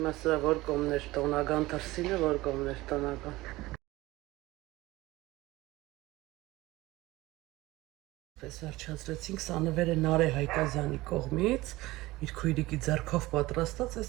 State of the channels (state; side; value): quieter; left; 19.1 dB